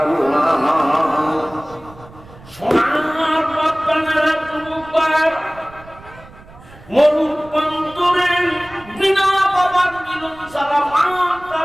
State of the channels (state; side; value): noise; right; rumble, 21 dB below the sound